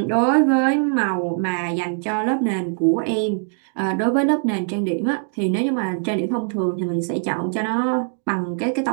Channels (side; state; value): left; silent; 64 dB below the other